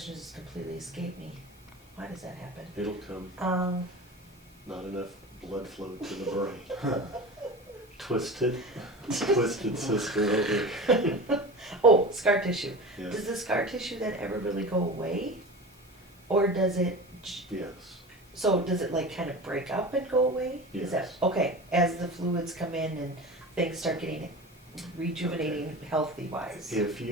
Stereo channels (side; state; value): both; normal; correlation 0.32